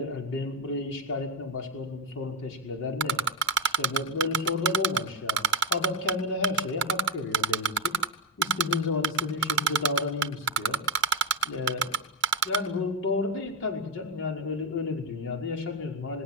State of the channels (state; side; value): normal; both; correlation 0.09